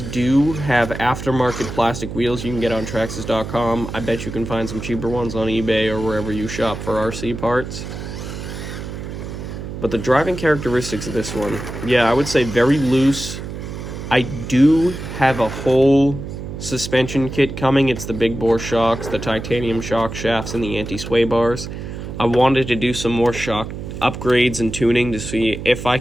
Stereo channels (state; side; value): noise; right; hum, 8 dB below the sound